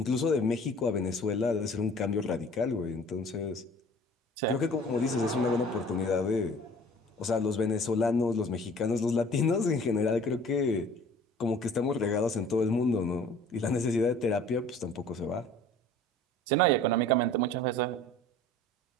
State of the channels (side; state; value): both; normal; correlation 0.48